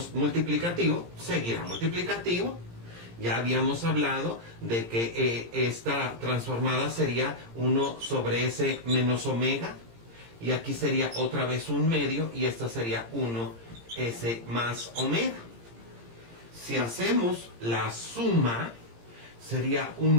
multiplicativo seguirá multiplicativo. Ya habíamos hablado de que esta transformada sería 1 sobre s menos omega, y aquí sería otra vez un medio, y esta sería 1s más omega. Si hacemos la suma, sería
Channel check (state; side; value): late; left; 17 ms